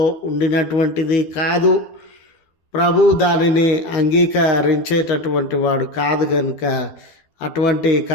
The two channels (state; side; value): late; right; 12 ms